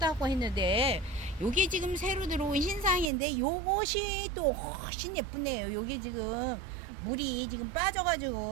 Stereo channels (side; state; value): left; drops out; at 3.1 s